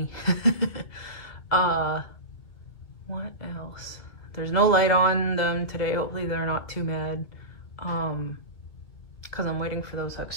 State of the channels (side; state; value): right; late; 2.4 ms